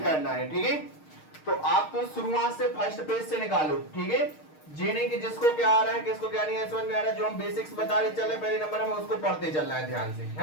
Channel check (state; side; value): late; right; 6.5 ms